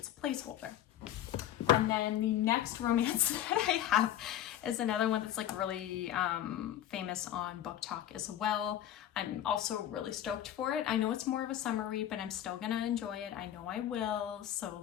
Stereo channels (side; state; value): right; quieter; 11.6 dB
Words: a placeholder. And then the next romance that I have is another one that's like really famous on Book Talk as well. I'm also really stoked for it. I know it's more of a summer read, but I'm still gonna enjoy it. I know I will, so